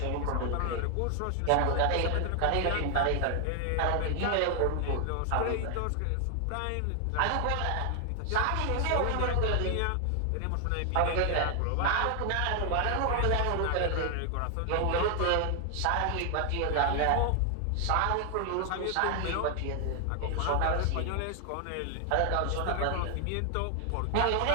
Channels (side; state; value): both; different; correlation 0.00